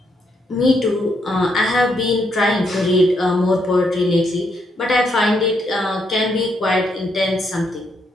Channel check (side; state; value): both; normal; correlation 0.76